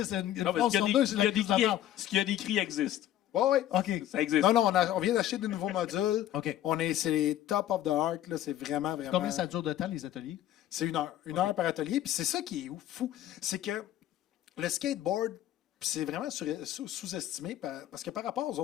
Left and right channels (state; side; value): quieter; right; 12.5 dB